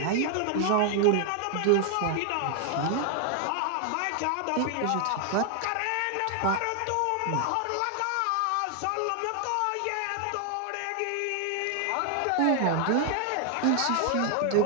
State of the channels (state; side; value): different; both; correlation 0.00